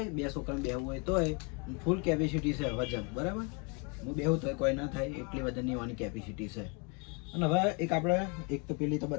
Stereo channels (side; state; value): right; quieter; 33.3 dB